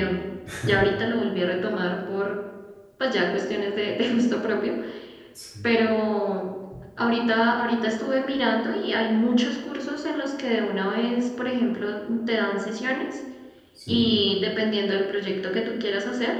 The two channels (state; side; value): identical; both; correlation 1.00